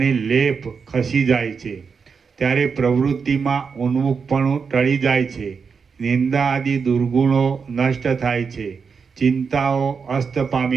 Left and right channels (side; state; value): left; quieter; 5.7 dB